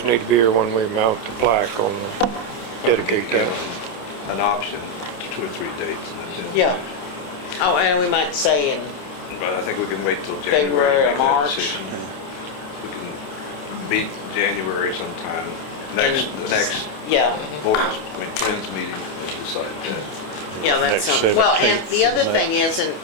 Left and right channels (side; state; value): right; late; 27 ms